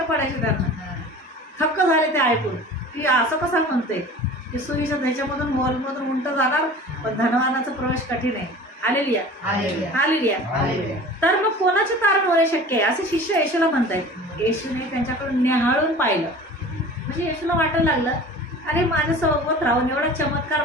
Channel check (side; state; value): both; normal; correlation 0.41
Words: पडायचे त्यांना. थक्क झाले ते ऐकून की असं कसं म्हणते की सुईच्या ह्याच्यामधून हॉलमधून उंट जाणार पण धनवानाचा प्रवेश कठीण आहे. हालेलुया. तर मग कोणाचे कारण होणे शक्य आहे असे शिष्य येशूला म्हणतायत. येशूने त्यांच्याकडून निहाळून पाहिलं. म्हणजे येशूला वाटायला लागलं, अरे माझ्या सोबत राहून एवढा चमत्कार